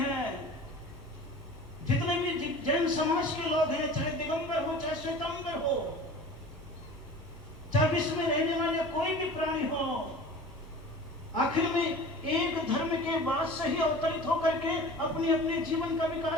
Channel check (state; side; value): normal; both; correlation 0.39